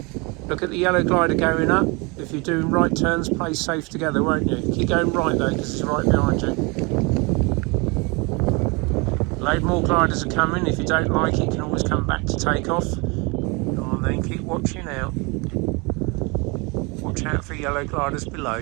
Look at the yellow glider going up. If you're doing right turns, play safe together, won't you? Keep going right though, because it's right behind you. Load more gliders are coming. If you don't like it, you can always come back to take off. Go on then, keep watching out. Watch out for yellow gliders below.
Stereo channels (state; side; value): quieter; left; 28.6 dB